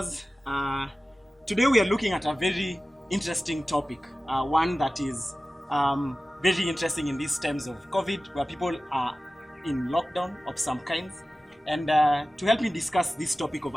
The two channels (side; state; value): both; normal; correlation 0.96